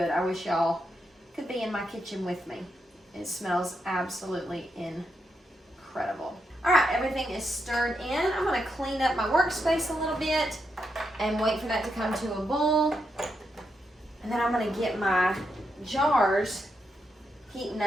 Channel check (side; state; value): both; normal; correlation 0.83